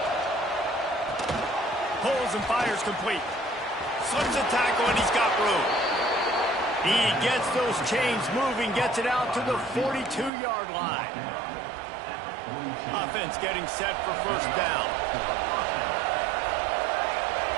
Pulls and fires complete. Slips a tackle, and he's got room. He gets those chains moving, gets it out to the 42-yard line. Offense getting set for 1st down.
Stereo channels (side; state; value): left; drops out; at 10.3 s